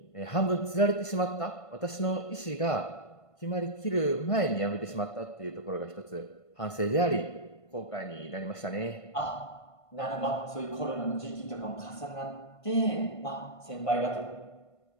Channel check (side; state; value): right; late; 1.5 ms